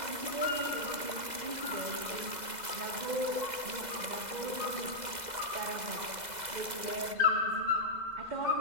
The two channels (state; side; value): late; left; 2.0 ms